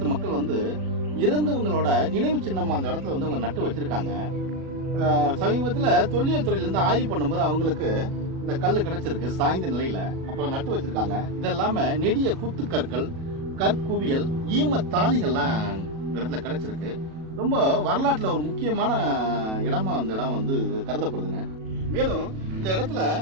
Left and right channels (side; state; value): left; late; 37 ms